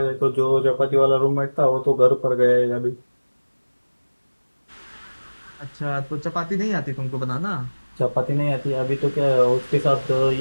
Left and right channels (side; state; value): both; inverted; correlation -1.00